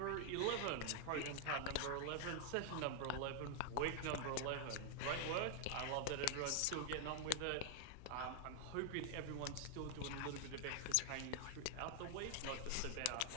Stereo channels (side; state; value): both; different; correlation 0.00